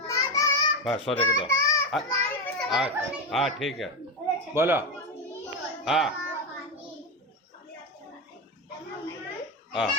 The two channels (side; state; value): both; normal; correlation 0.14